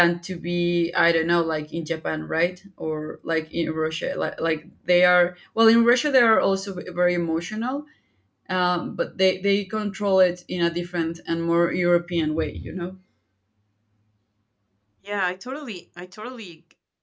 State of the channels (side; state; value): both; identical; correlation 1.00